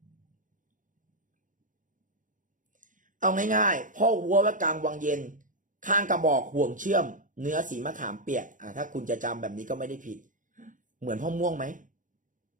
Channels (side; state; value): left; late; 0.38 ms